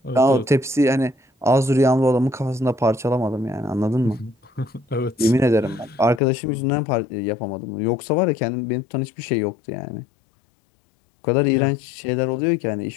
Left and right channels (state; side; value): drops out; right; at 6.2 s